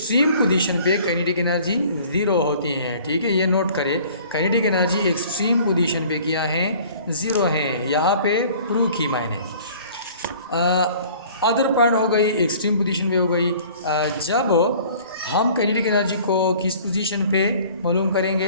पोजीशन पे काइनेटिक एनर्जी ज़ीरो होती है, ठीक है। ये नोट करें, काइनेटिक एनर्जी एक्सट्रीम पोजीशन पे क्या है, ज़ीरो है। यहाँ पे प्रूव की मैंने अदर पॉइंट हो गई, एक्सट्रीम पोजीशन पे हो गई। जब हम काइनेटिक एनर्जी को किस पोजीशन पे मालूम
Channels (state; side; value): inverted; both; correlation -0.50